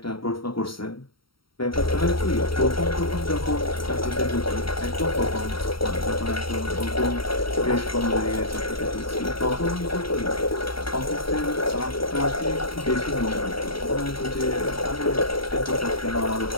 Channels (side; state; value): right; late; 0.74 ms